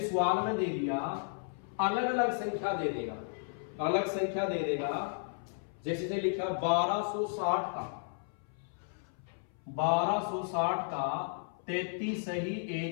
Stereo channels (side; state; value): right; silent; 55 dB below the other